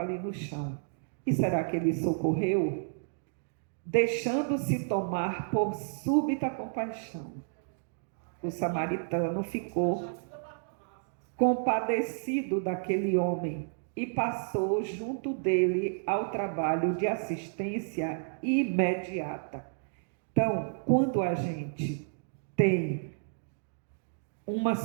ali no chão. E será que ele socorreu? Deixando-se tomar por súbita compaixão, o samaritano ficou compadecido daquele homem e passou junto dele ao trabalho de assistência imediata. Então, quando a gente tem uma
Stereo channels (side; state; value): left; silent; digital silence